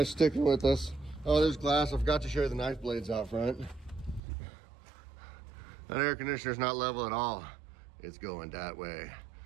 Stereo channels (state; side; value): drops out; left; at 4.2 s